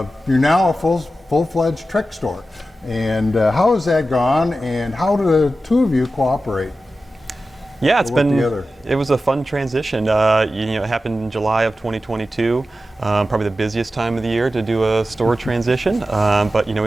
You're now a full-fledged Trek store. And how has that gone, and how do the two of you cooperate? Yeah, it was a fun transition. It happened in July of 2022, probably the busiest time of the year to do a store transition. But we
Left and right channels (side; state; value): both; normal; correlation 0.93